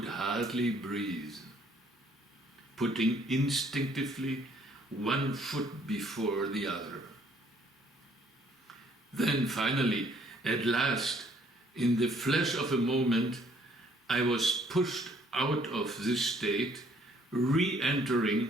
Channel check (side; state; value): both; normal; correlation 0.63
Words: hardly breathe, putting instinctively one foot before the other. Then finally, at last, in the flash of a moment, I was pushed out of this state,